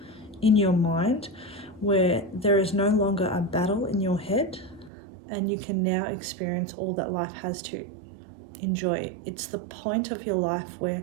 in your mind where there is no longer a battle in your head, and you can now experience all that life has to enjoy. It's the point of your life where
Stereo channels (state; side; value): drops out; left; at 4.9 s